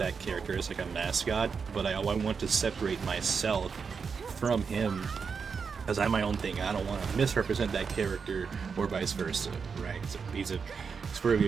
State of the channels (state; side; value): quieter; left; 5.7 dB